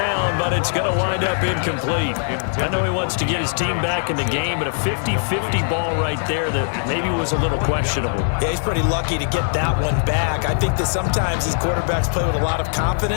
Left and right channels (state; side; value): silent; right; 65 dB below the other